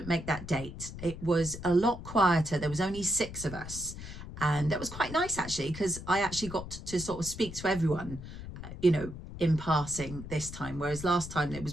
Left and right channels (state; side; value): noise; left; rumble, 11 dB below the sound